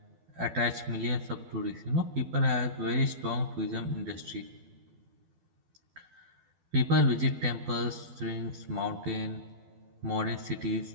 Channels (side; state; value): left; late; 12 ms